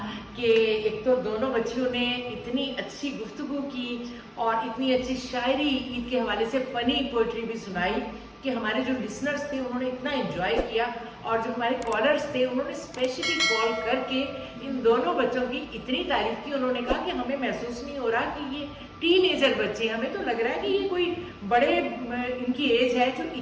कि एक तो दोनों बच्चियों ने इतनी अच्छी गुफ्तगू की और इतनी अच्छी शायरी ईद के हवाले से फनी पोइट्री भी सुनाई कि हमारे जो लिसनर्स थे उन्होंने इतना एंजॉय किया। और जो हमारे कॉलर्स थे उन्होंने स्पेशली कॉल करके इन दोनों बच्चों की इतनी तारीफ की। उन्होंने कहा कि हमें महसूस नहीं हो रहा कि ये टीनेजर बच्चे, हमें तो लग रहा है कि ये कोई बड़े इनकी एज है जो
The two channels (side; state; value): both; identical; correlation 1.00